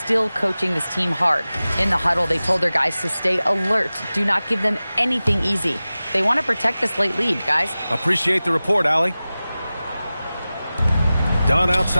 coaching this team hard. In the huddle, they told their guys to stay alert. Do not give them anything easy. They want to protect this late lead, guys. Appreciate the report, Allie. Dunn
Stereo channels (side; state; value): both; inverted; correlation -0.96